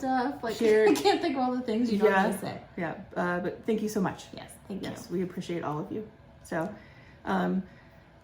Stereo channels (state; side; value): identical; both; correlation 1.00